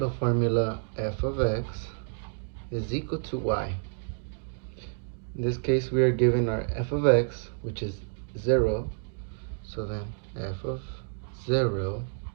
formula f of x is equal to y. In this case, we are given our f of x, which is 0. So then f of 0.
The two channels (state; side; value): silent; left; 58 dB below the other